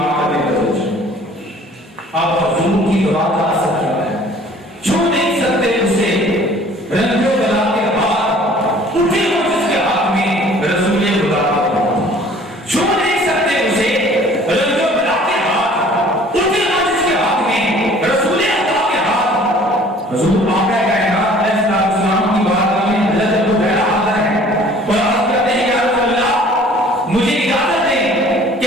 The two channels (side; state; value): both; normal; correlation 0.52